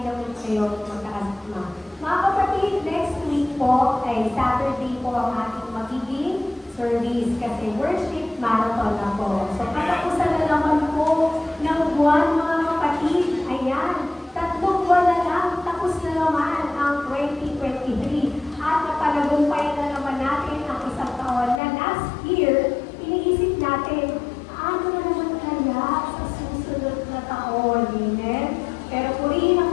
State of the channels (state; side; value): drops out; right; at 21.6 s